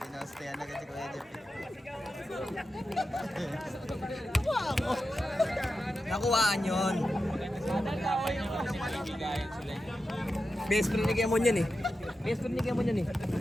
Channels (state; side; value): normal; both; correlation 0.91